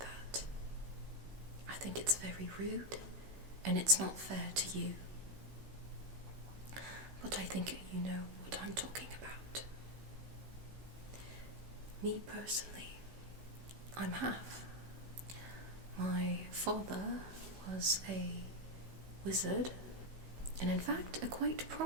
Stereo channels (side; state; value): left; late; 16 ms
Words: I think it's very rude, and it's not fair to you. But I think you know what I'm talking about. Me personally, I'm half. My father was a wizard, and in fact a quite